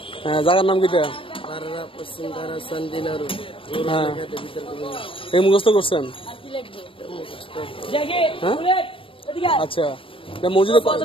হ্যাঁ, জায়গার নাম কিটা? হ্যাঁ, এই মুখস্থ করছেন? হ্যাঁ, আচ্ছা।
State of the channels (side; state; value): right; late; 0.26 ms